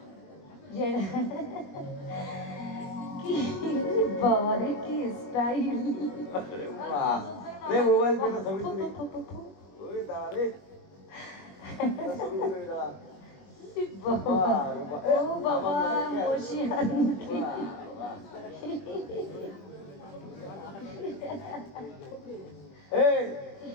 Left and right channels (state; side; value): late; right; 21 ms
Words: যে কি বাবা রে, কি স্টাইল! রে মোবাইল पे ছবি তুলি ওই দাঁড়া রে ছবি তুলে দাঁড়া ও বাবা মশিয়ান এই